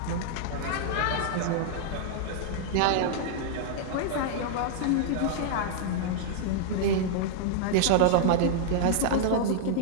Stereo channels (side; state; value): both; different; correlation -0.01